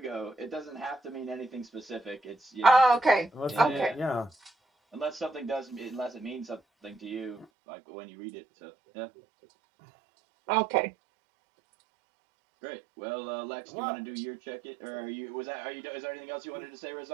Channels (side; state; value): left; drops out; at 7.5 s